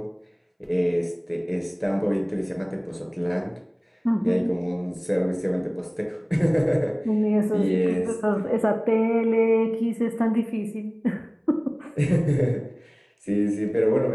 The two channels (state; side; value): identical; both; correlation 1.00